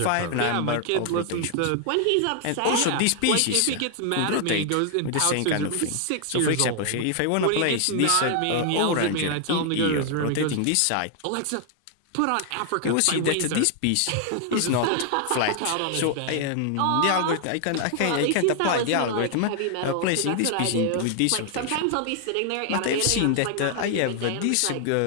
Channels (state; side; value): different; both; correlation 0.00